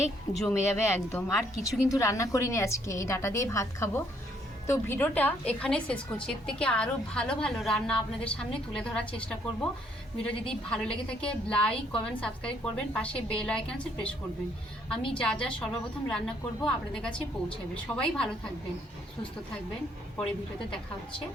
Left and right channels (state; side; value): normal; both; correlation 0.68